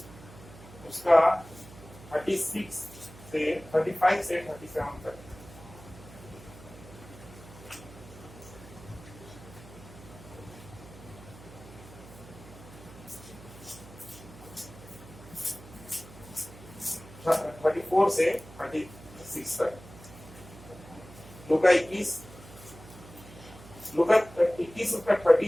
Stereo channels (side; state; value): right; noise; hum, 18 dB below the sound